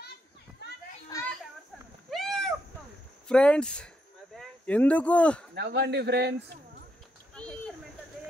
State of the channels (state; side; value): normal; both; correlation 0.79